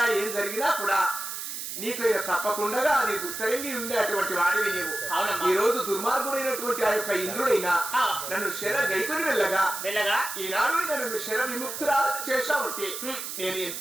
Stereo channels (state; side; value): noise; right; hiss, 6 dB below the sound